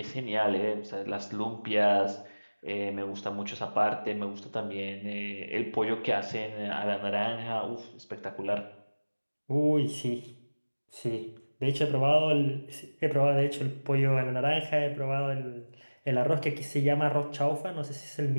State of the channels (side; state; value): both; inverted; correlation -1.00